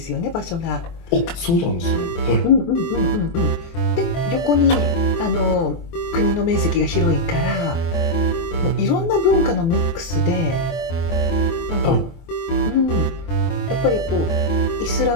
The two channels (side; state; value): right; late; 24 ms